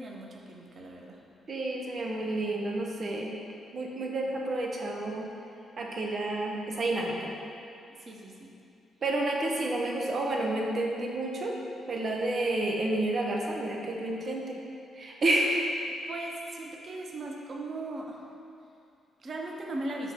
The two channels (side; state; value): both; normal; correlation 0.79